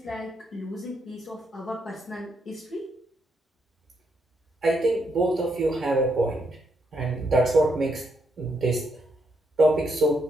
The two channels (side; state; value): both; normal; correlation 0.78